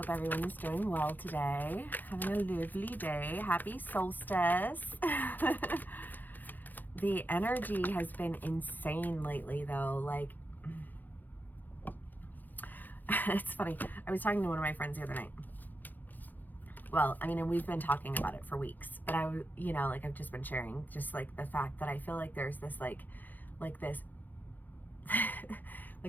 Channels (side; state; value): right; late; 0.086 ms